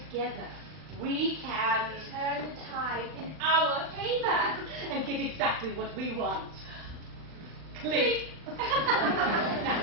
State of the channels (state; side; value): late; left; 39 ms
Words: we can Turn the tide in our favor. and get exactly what we want. Click.